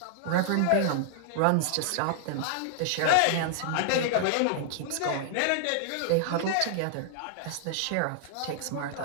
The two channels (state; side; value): different; both; correlation -0.01